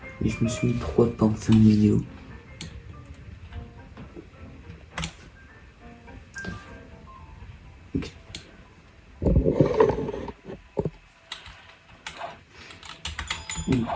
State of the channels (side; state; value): both; identical; correlation 1.00